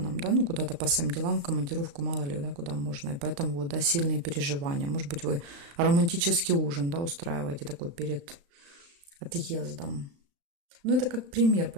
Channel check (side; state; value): left; late; 35 ms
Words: да, ну, куда-то по своим делам, в командировку, мало ли, да, куда можно, и поэтому, вот, да, сильные переживания. Может быть, вы романтический ужин, да, устраиваете такой перед отъездом. Ну, это как пример,